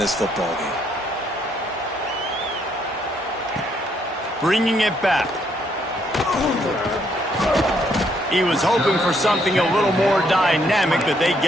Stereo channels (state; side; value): normal; both; correlation 0.71